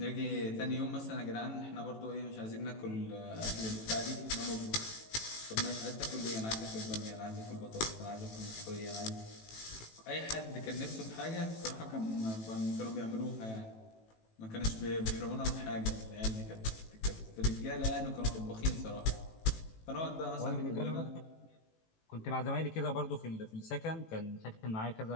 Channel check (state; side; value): late; right; 18 ms